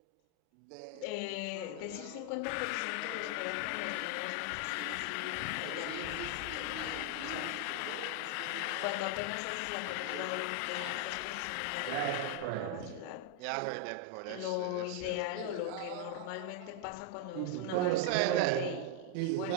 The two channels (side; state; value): both; different; correlation 0.00